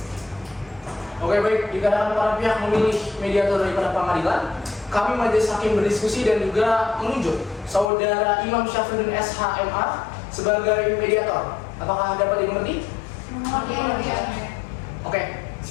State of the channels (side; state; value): right; drops out; at 7.9 s